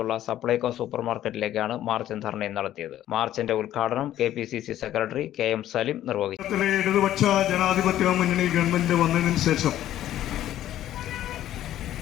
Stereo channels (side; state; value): right; quieter; 12.5 dB